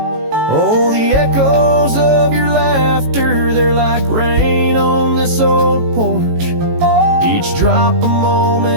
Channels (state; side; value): late; left; 18 ms